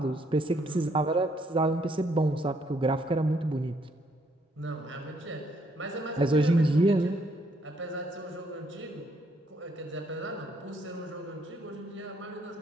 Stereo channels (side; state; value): both; normal; correlation 0.70